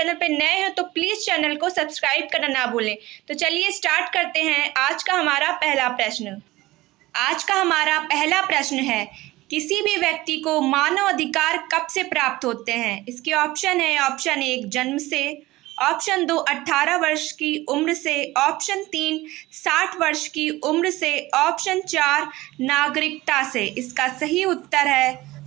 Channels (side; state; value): left; quieter; 18.6 dB